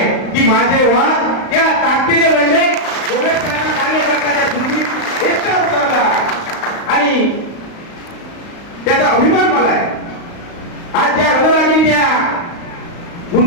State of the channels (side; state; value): right; late; 35 ms